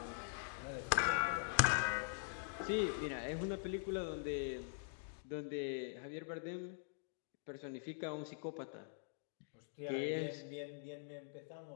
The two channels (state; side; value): silent; right; digital silence